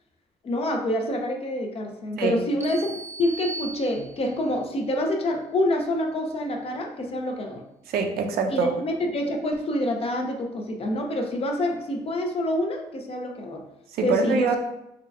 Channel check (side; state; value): both; normal; correlation 0.59